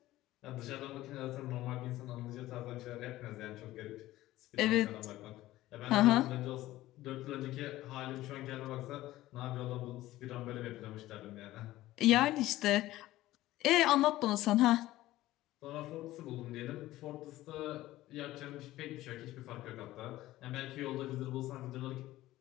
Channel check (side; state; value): right; quieter; 16.1 dB